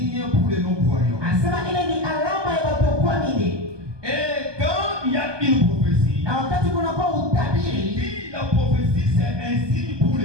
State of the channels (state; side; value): late; left; 1.2 ms